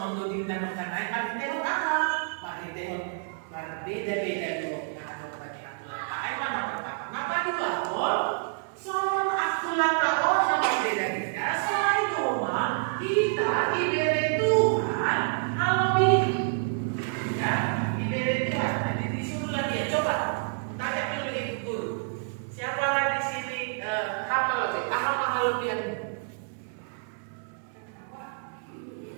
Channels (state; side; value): silent; left; digital silence